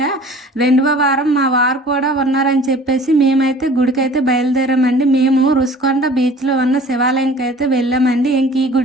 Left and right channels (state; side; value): normal; both; correlation 0.47